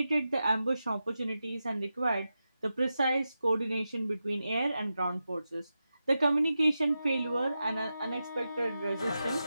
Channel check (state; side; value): inverted; both; correlation -0.90